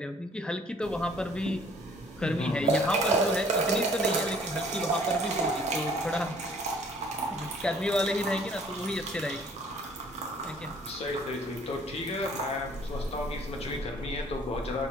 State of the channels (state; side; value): normal; both; correlation 0.57